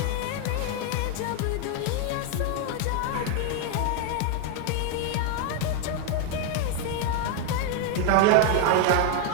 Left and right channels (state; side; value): different; both; correlation 0.01